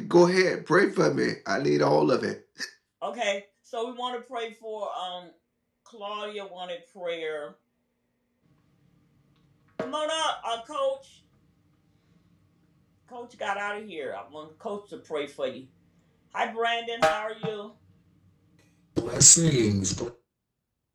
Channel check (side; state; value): both; identical; correlation 1.00